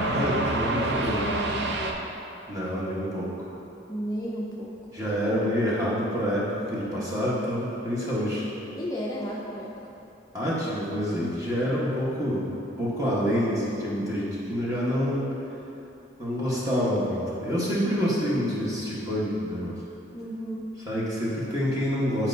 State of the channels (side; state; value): both; normal; correlation 0.57